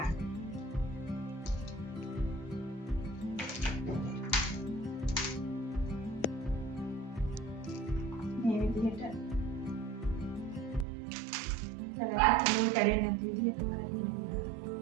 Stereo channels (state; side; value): drops out; left; at 10.9 s